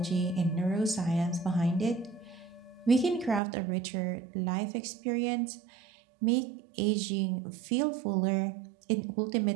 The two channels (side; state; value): left; drops out; at 3.4 s